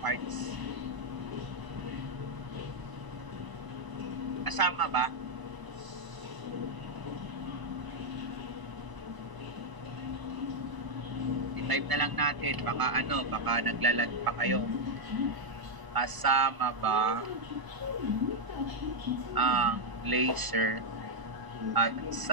Kasama ba? I-type na lang natin, baka naglalag pa kayo. Kasama ba ang laser at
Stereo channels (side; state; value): left; late; 1.0 ms